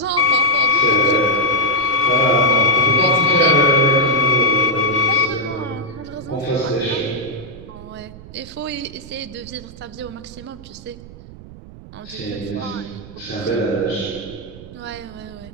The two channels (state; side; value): noise; right; rumble, 17 dB below the sound